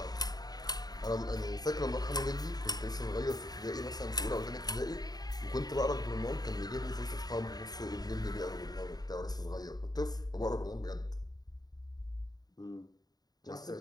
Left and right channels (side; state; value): right; late; 0.19 ms